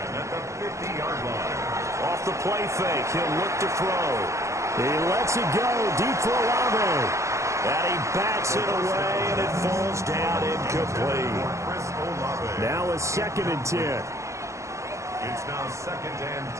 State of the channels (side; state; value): left; late; 0.14 ms